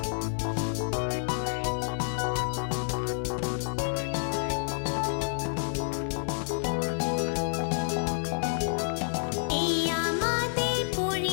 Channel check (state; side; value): silent; right; digital silence